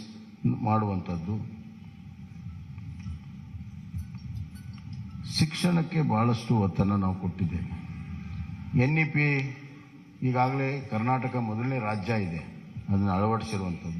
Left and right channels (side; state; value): both; identical; correlation 1.00